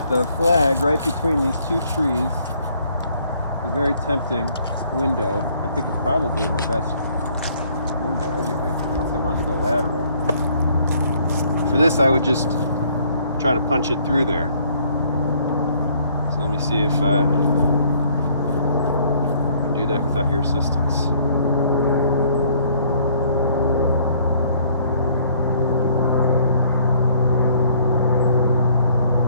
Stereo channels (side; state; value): both; inverted; correlation -0.62